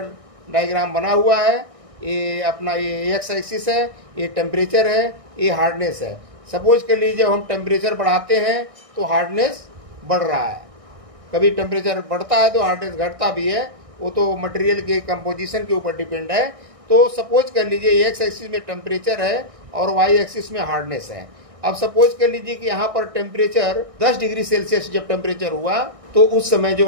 डायग्राम बना हुआ है, ये अपना ये एक्स एक्सिस है, ये टेम्परेचर है, ये हार्डनेस है। सपोज कर लीजिए हम टेम्परेचर बढ़ाते हैं तो हार्डनेस बढ़ रहा है, कभी टेम्परेचर बढ़ता है तो हार्डनेस घटता भी है, वो तो मटेरियल के कंपोजिशन के ऊपर डिपेंड है। तो सपोज कर लीजिए एक्स एक्सिस में टेम्परेचर है और वाई एक्सिस में हार्डनेस है। अब सपोज कर लीजिए कि यहाँ पर टेम्परेचर 10 डिग्री सेल्सियस जब टेम्परेचर हुआ तो उस समय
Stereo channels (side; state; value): left; late; 1.6 ms